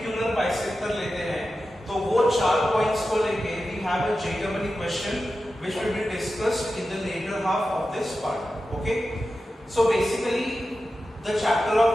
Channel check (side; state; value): both; normal; correlation 0.92